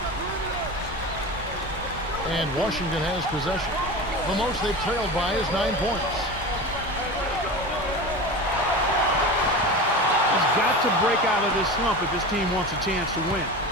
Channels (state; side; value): normal; both; correlation 0.29